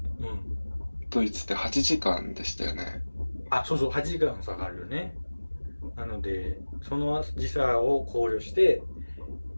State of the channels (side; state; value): both; inverted; correlation -1.00